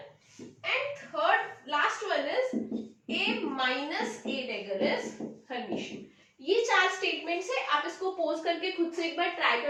Minus A dagger is Hermitian. ये 4 स्टेटमेंट्स है, आप इसको पोज करके खुद से एक बार ट्राई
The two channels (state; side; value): identical; both; correlation 1.00